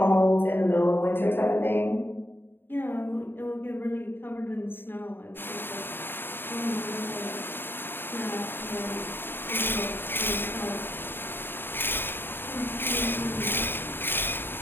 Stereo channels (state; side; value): late; right; 0.10 ms